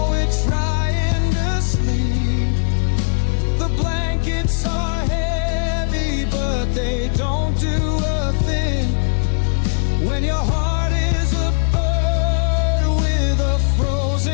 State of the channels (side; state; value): right; silent; digital silence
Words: we're trying to sleep. The blankets are heavy, but they don't do a thing when your heart is a bird with a